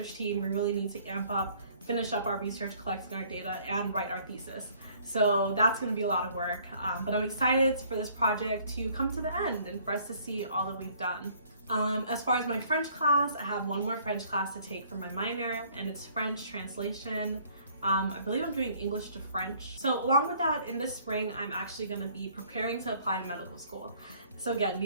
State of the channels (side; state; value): both; inverted; correlation -0.59